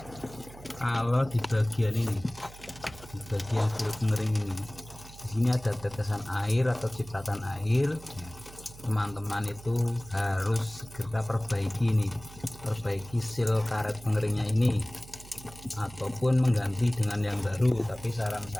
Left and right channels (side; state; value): right; noise; hum, 18 dB below the sound